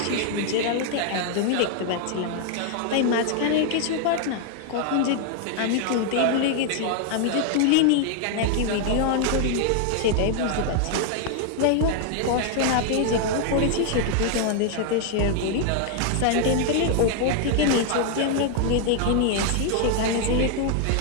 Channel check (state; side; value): different; both; correlation 0.00